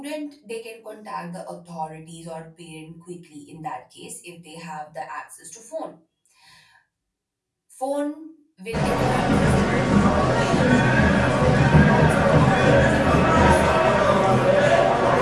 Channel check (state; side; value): identical; both; correlation 1.00